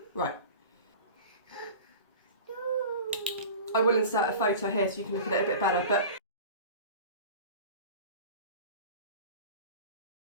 Right. I will insert a photo here so you can look at it a bit better, but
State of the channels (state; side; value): inverted; both; correlation -0.36